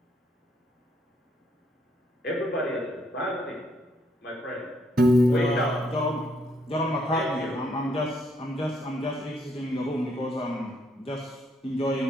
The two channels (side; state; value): both; normal; correlation 0.72